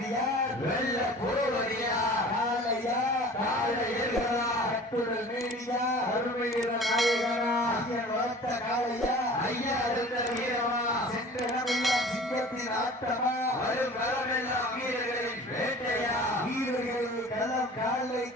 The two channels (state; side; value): normal; both; correlation 0.43